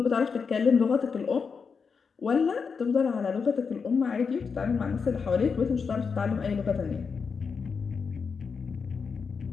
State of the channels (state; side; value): quieter; right; 5.6 dB